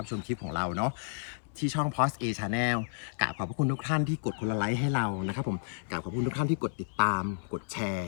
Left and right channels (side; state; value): right; silent; 57 dB below the other